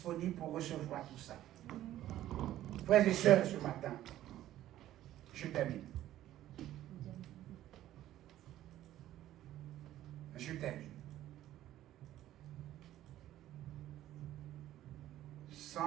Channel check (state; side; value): quieter; left; 13.4 dB